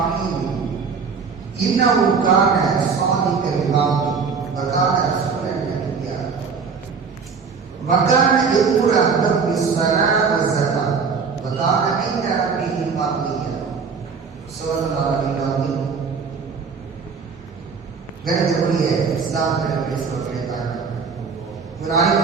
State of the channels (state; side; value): quieter; left; 5.5 dB